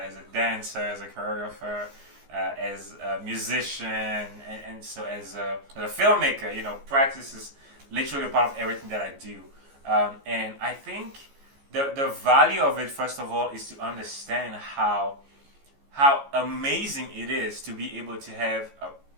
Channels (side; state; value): left; late; 14 ms